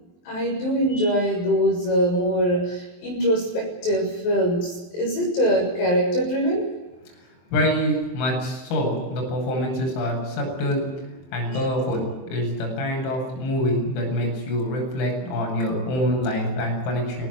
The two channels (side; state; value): right; late; 23 ms